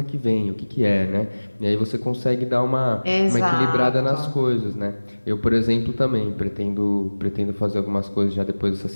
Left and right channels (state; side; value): inverted; both; correlation -1.00